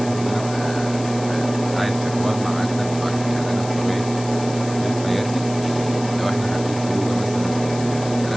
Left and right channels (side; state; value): left; noise; hiss, 14 dB below the sound